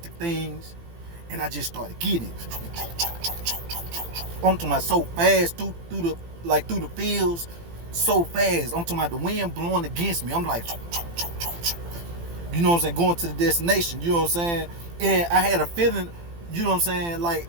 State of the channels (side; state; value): left; late; 18 ms